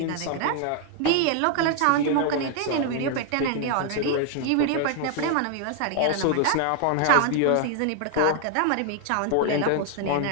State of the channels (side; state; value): both; different; correlation 0.00